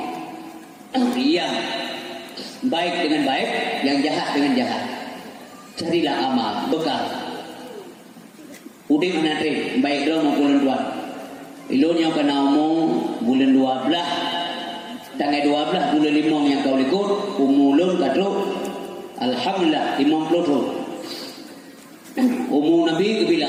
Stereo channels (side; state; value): both; identical; correlation 1.00